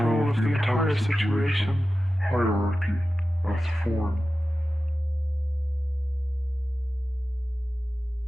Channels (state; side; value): normal; both; correlation 0.94